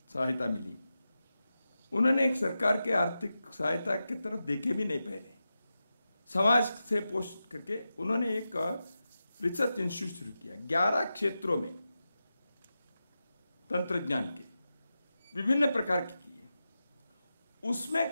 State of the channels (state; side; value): inverted; both; correlation -0.91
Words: सहायता मिली। उन्होंने एक सरकार के आर्थिक सहायता की तरफ देखे भी नहीं पहले। समाज से पोस्ट करके उन्होंने एक रिसर्च इंस्टीट्यूट शुरू किया 11 क्षेत्रों में, तंत्रज्ञान के विभिन्न प्रकार के किए। उसमें